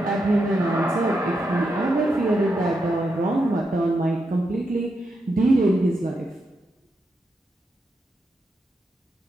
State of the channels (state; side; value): normal; both; correlation 0.84